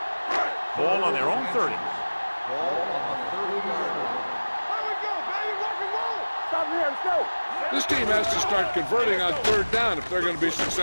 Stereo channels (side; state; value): both; inverted; correlation -1.00